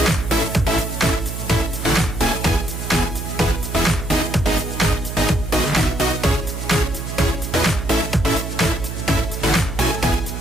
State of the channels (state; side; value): noise; right; hum, 6 dB below the sound